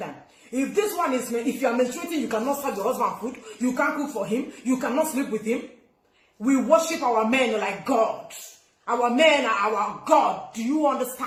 If this one is, if you are menstruating, you cannot serve your husband food. You can't cook for him. You cannot sleep with him. We worship our men like God. Our men are our God. Do you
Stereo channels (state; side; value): identical; both; correlation 1.00